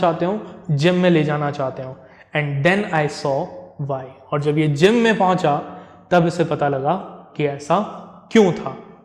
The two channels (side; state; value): both; identical; correlation 1.00